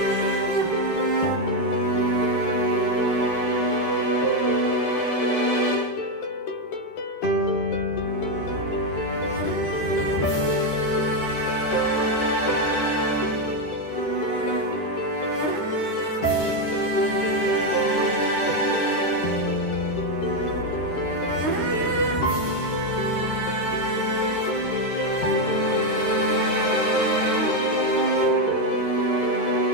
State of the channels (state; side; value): late; right; 13 ms